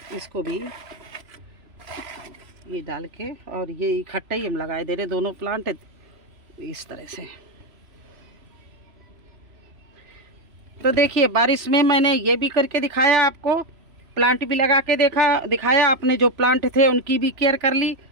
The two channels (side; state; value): left; late; 3.0 ms